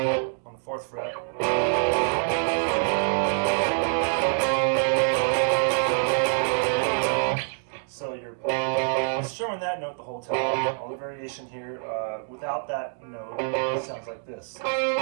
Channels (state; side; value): silent; left; 61 dB below the other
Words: 4th fret. So you're strumming that note the whole time. All the variation here, without that note, it sounds like this.